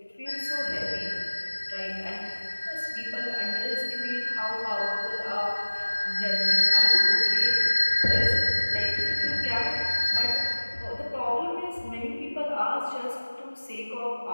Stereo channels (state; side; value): inverted; both; correlation -1.00